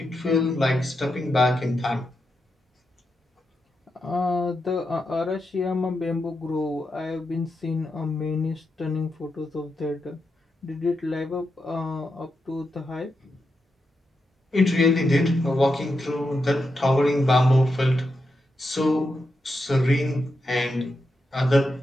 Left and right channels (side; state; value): both; normal; correlation 0.86